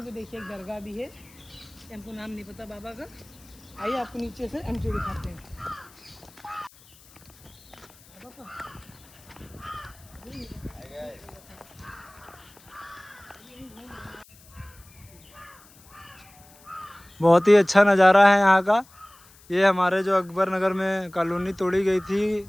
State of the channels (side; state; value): left; noise; hiss, 25 dB below the sound